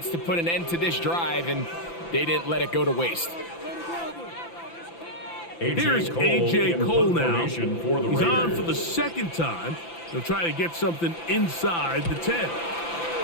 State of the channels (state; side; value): late; right; 5.9 ms